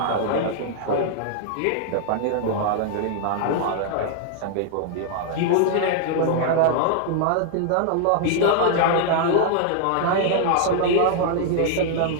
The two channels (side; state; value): both; different; correlation 0.00